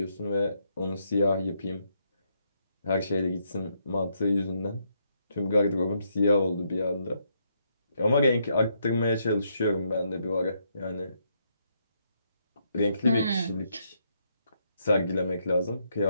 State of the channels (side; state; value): both; inverted; correlation -0.75